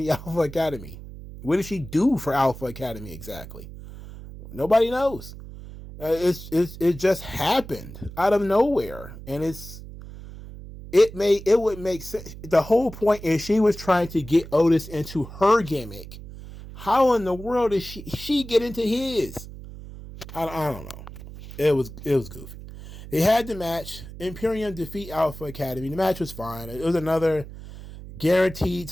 Alpha Academy? What did she do for Alpha Academy exactly? Nobody knows. It just happened out of nowhere, and it would make sense. The whole point is she was trying to get Otis into her gimmick. How in the world did she get into his? I don't know. It was goofy. They had the match. Imperium defeat Alpha Academy. The match was fine. It was another guaranteed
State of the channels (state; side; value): noise; right; hum, 14 dB below the sound